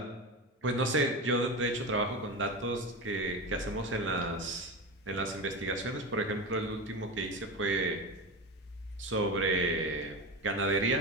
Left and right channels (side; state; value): both; normal; correlation 0.22